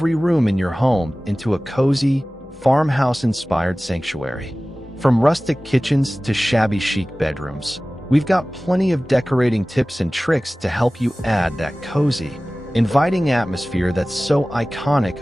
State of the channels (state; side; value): normal; both; correlation 0.97